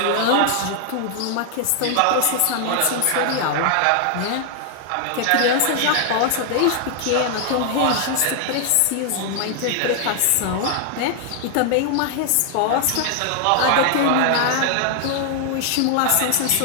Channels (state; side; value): different; both; correlation 0.00